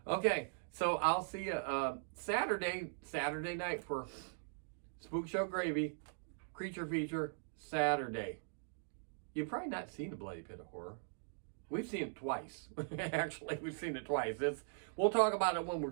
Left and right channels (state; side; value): silent; left; digital silence